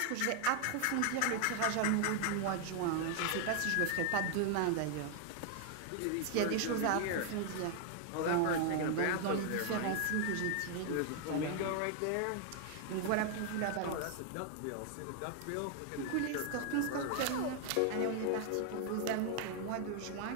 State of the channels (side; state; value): both; different; correlation 0.00